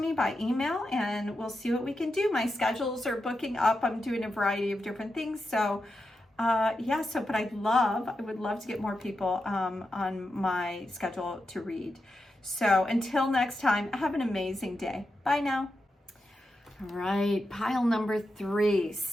by email and we'll see what we can do. My schedules are booking up. I'm doing a variety of different things. So yeah, but I would love to get more people on my schedule to read. So until next time, have an amazing day. Bye now. All right, pile number 3.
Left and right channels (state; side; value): normal; both; correlation 0.88